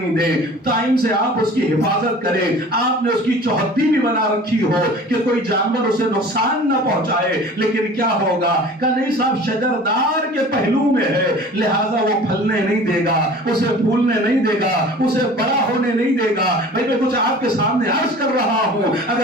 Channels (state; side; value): normal; both; correlation 0.43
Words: دیں، ٹائم سے آپ اس کی حفاظت کریں، آپ نے اس کی چوہدی بھی بنا رکھی ہو کہ کوئی جانور اسے نقصان نہ پہنچائے، لیکن کیا ہوگا کہ نہیں صاحب شجردار کے پہلو میں ہے، لہٰذا وہ پھلنے نہیں دے گا، اسے پھولنے نہیں دے گا، اسے بڑا ہونے نہیں دے گا۔ بھئی میں کچھ آپ کے سامنے عرض کر رہا ہوں،